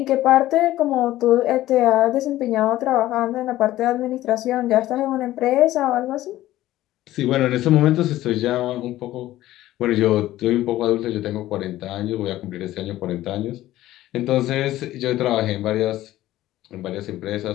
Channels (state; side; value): quieter; right; 15.0 dB